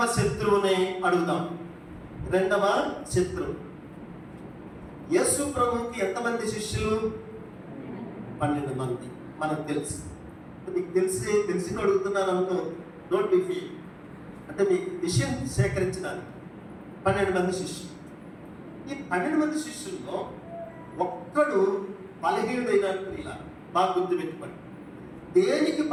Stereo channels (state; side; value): identical; both; correlation 1.00